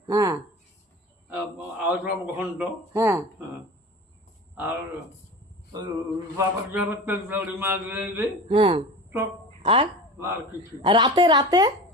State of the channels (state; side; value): normal; both; correlation 0.34